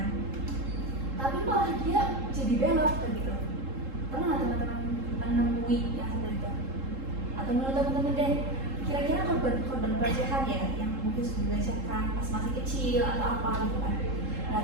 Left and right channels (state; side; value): late; left; 3.7 ms